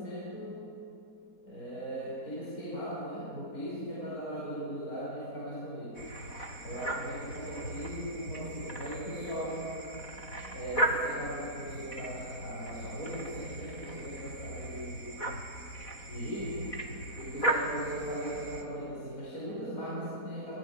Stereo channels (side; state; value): right; late; 4.1 ms